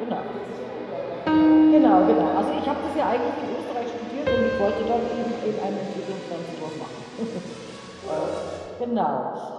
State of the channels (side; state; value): both; identical; correlation 1.00